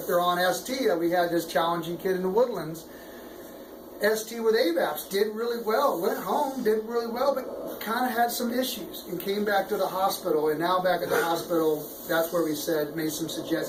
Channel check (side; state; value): both; identical; correlation 1.00